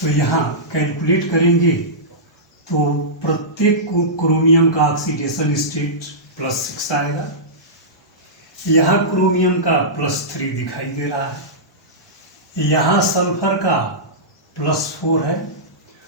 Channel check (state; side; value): normal; both; correlation -0.16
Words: यहाँ कैलकुलेट करेंगे तो प्रत्येक क्रोमियम का ऑक्सीडेशन स्टेट +6 आएगा। यहाँ क्रोमियम का +3 दिखाई दे रहा है, यहाँ सल्फर का +4 है